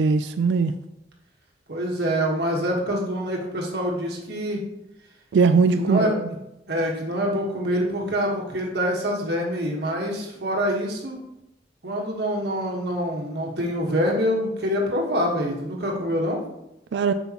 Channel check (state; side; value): normal; both; correlation 0.37